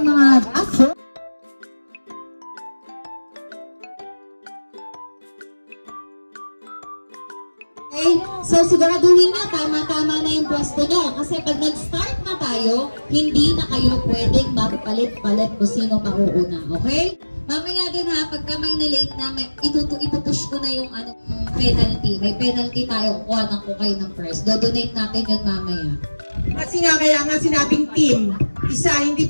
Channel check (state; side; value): inverted; both; correlation -1.00